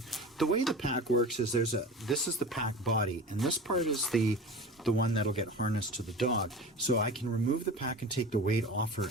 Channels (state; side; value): normal; both; correlation 0.34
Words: The way the pack works is this is the pack body, and this part is the one that'll get harnessed to the dog. So I can remove the pack and take the weight off her,